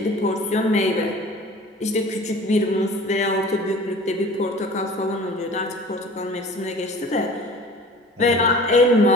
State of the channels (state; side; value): normal; both; correlation 0.44